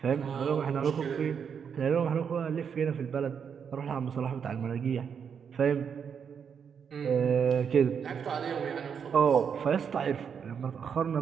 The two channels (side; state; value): left; quieter; 7.1 dB